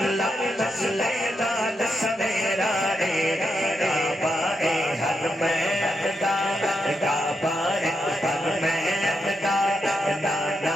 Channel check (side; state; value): both; normal; correlation 0.84